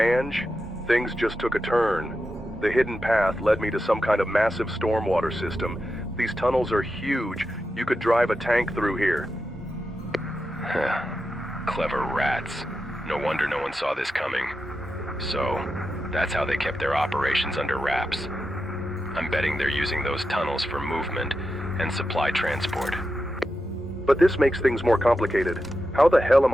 things just took a turn. The hidden path led me to some kind of massive stormwater system. These tunnels are huge. You could drive a tank through here. Clever rats. No wonder no one saw this coming. So, that's how they kept their operations under wraps. I'm betting they're using those tunnels for movement and supply transport. But this makes things more complicated. How the hell am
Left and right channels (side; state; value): both; normal; correlation 0.89